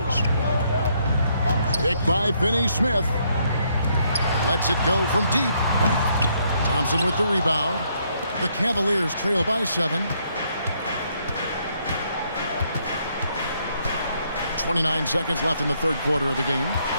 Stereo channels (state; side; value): inverted; both; correlation -0.72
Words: Picked by Finney-Smith. Lets it go from deep. Thompson with the rebound. The Cavaliers trail by 7. 29 seconds left in the third quarter of the game.